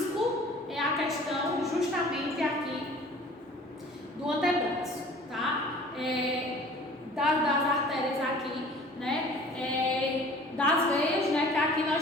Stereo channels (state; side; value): normal; both; correlation 0.47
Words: é a questão justamente aqui do antebraço, tá? Das artérias aqui, né? Das veias, né? Que aqui